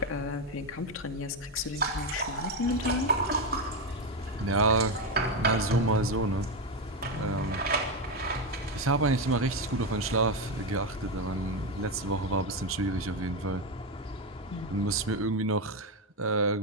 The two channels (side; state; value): both; normal; correlation 0.09